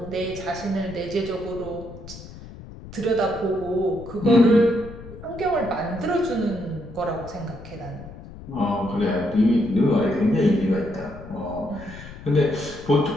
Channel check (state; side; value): noise; left; rumble, 15 dB below the sound